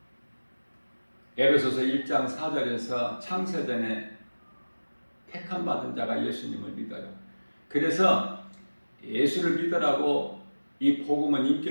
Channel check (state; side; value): inverted; both; correlation -1.00